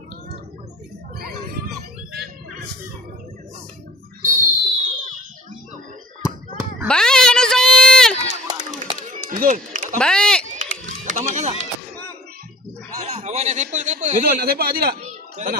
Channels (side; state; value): both; normal; correlation 0.47